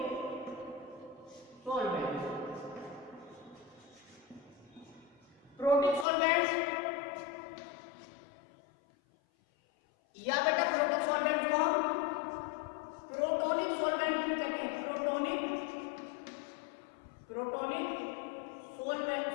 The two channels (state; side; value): drops out; right; at 6.1 s